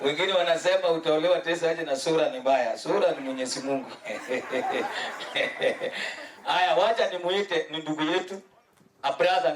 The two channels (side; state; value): both; identical; correlation 1.00